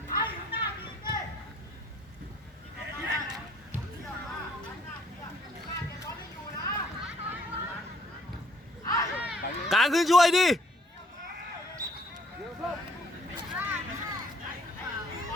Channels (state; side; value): normal; both; correlation 0.61